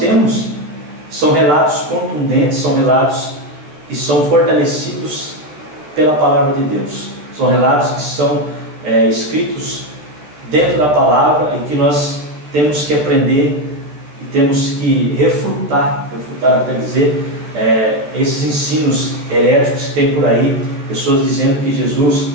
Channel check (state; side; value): late; left; 13 ms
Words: são relatos contundentes, são relatos que são fortalecidos pela palavra de Deus, são relatos que são escritos dentro da palavra e que nós temos que aprender e temos que refutar até dizer, esses ensinos heréticos que tem por aí, pessoas dizendo que Jesus